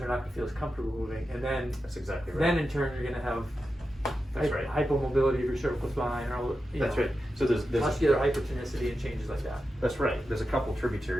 not going to feel as comfortable moving. And then, That's exactly right. then in turn, you're going to have That's right. hypomobility of your cervical spine, or That's right. So there's muscular hypertonicity and changes like that. That's right. There's a couple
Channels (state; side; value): normal; both; correlation 0.90